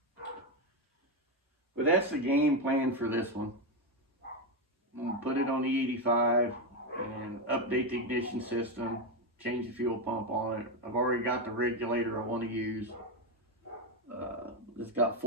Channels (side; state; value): both; normal; correlation 0.09